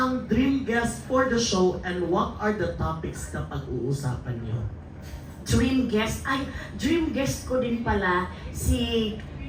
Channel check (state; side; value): identical; both; correlation 1.00